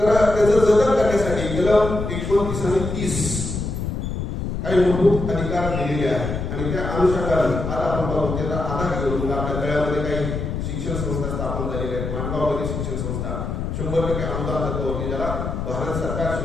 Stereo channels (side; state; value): left; noise; rumble, 4 dB below the sound